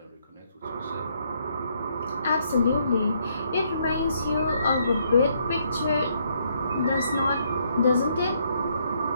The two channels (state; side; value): inverted; both; correlation -0.71